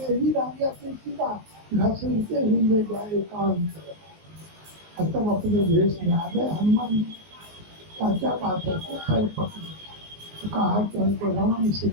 ही रह गया। तुलसीदास घसीटते ही ले जाए एकांत और तब अपने भेष में आ गए। हनुमान क्या बात है, तो पैर पकड़े तो कहा कि हमको राम से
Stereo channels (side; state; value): left; late; 19 ms